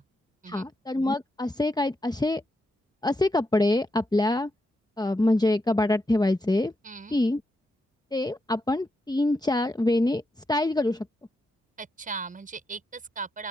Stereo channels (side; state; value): both; normal; correlation 0.84